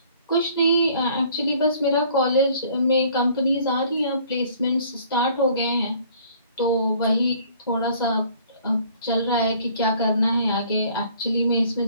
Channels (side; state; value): both; inverted; correlation -0.56